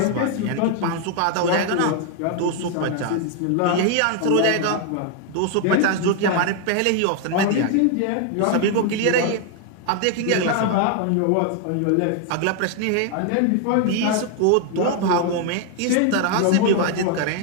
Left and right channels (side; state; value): both; different; correlation 0.00